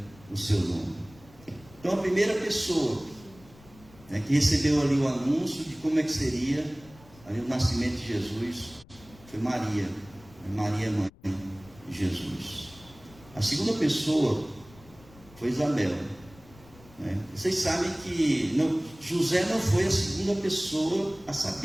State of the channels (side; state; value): left; noise; rumble, 24 dB below the sound